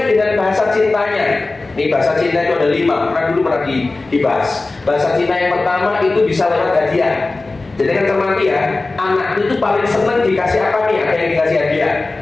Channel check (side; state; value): right; quieter; 3.3 dB